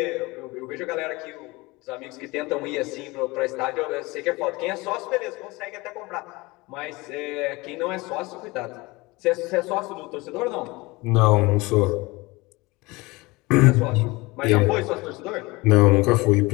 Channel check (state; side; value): quieter; right; 23.1 dB